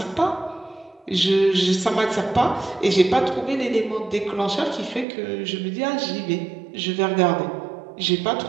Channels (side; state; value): left; drops out; at 5.1 s